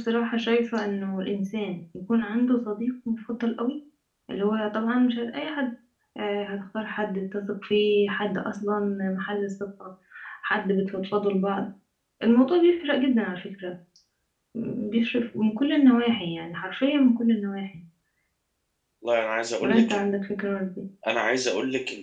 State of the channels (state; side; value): identical; both; correlation 1.00